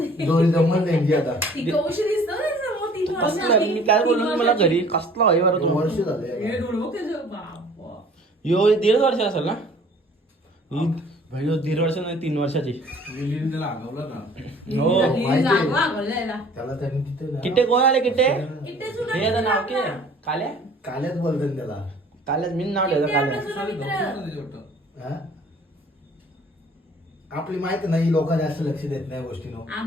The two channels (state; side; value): normal; both; correlation 0.52